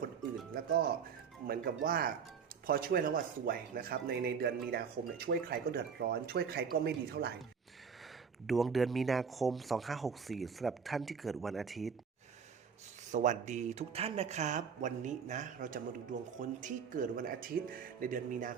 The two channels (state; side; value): quieter; left; 6.4 dB